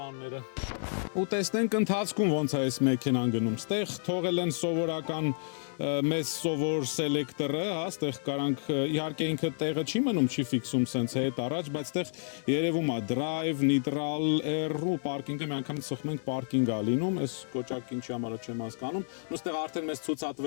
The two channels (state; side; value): silent; right; digital silence